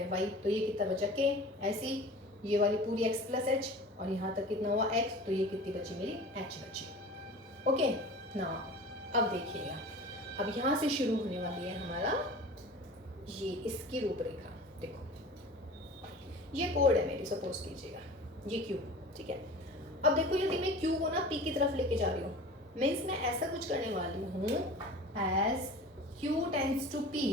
y, तो ये कितना बचा k, ऐसी ये वाली पूरी x प्लस एच, और यहाँ तक कितना हुआ x, तो ये कितनी बची मेरी h बची। ओके ना, अब देखिएगा, अब यहाँ से शुरू होने वाली है हमारा ये इसकी रूपरेखा। देखो, ये कोड है मेरी, सपोज कीजिएगा ये क्यू, ठीक है। अब देखो यदि मैं क्यू को ना पी की तरफ लेके जा रही हूँ, मैं इसमें ऐसा कुछ करने वाली हूँ as Q tends to P,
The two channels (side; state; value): both; normal; correlation 0.39